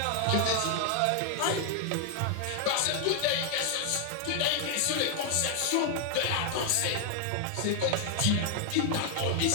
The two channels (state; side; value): different; both; correlation 0.00